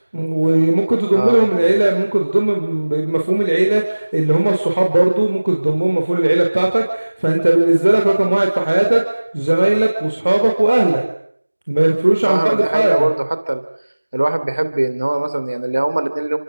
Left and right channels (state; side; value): inverted; both; correlation -1.00